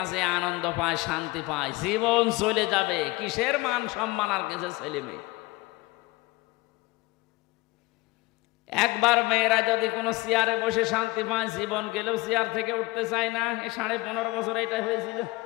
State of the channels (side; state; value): right; quieter; 22.2 dB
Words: আনন্দ পায়, শান্তি পায়, জীবন চলে যাবে। কিসের মান সম্মান আর কিসের ছেলে মেয়ে? একবার মেয়েরা যদি কোনো চেয়ারে বসে শান্তি পায়, জীবন গেলেও চেয়ার থেকে উঠতে চায় না। 15.5 বছর এটা হয়েছিল,